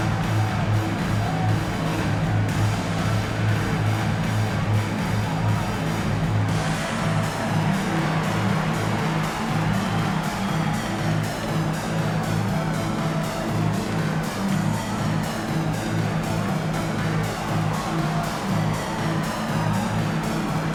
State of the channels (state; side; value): identical; both; correlation 1.00